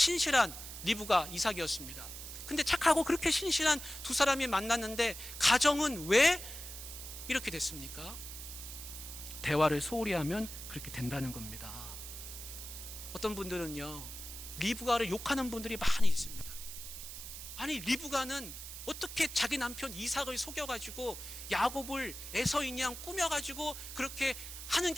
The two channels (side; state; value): right; noise; hiss, 10 dB below the sound